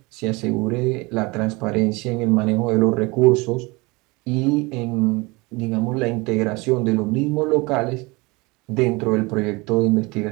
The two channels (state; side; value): quieter; left; 25.0 dB